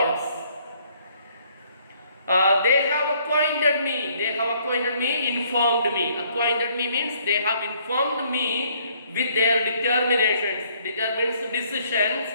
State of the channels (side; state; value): both; inverted; correlation -0.64